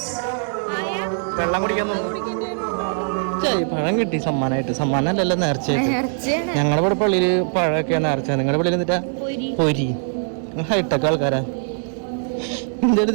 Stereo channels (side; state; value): left; silent; 65 dB below the other